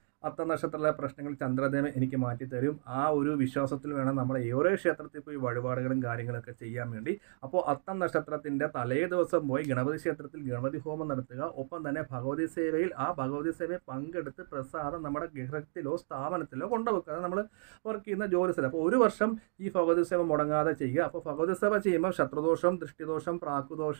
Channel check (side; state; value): left; silent; digital silence